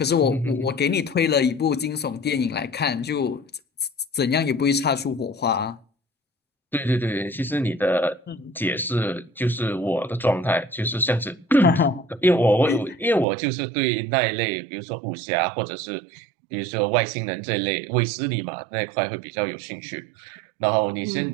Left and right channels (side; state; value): left; drops out; at 13.2 s